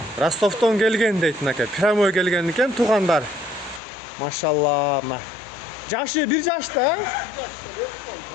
Ростовдон келген дейт мынакей. Прямой келген экен туугандар. Машалла, мына. Жашы 1 жашта.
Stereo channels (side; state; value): right; drops out; at 3.8 s